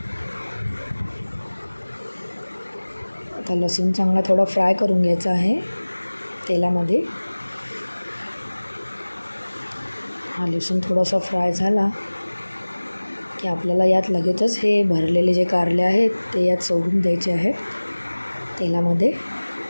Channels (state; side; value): inverted; both; correlation -1.00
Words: आता लसूण चांगला थोडा फ्राय करून घ्यायचा आहे तेलामध्ये. हा लसूण थोडासा फ्राय झाला की आपल्याला यात लगेचच हे भरलेले जे कारले आहेत ते यात सोडून द्यायचे आहेत तेलामध्ये.